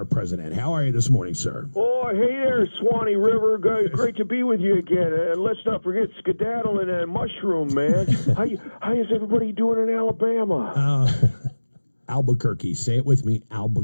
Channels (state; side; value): inverted; both; correlation -1.00